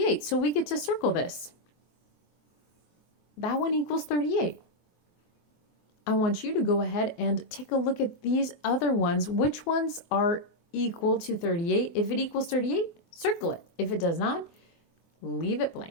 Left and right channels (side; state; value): right; late; 24 ms